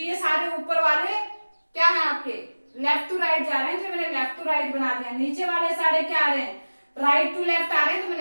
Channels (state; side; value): inverted; both; correlation -1.00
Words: सारे ऊपर वाले क्या है आपके लेफ्ट टू राइट जा रहे हैं, तो मैंने लेफ्ट टू राइट बना दिया। नीचे वाले सारे क्या आ रहे हैं, राइट टू लेफ्ट आ रहे हैं, तो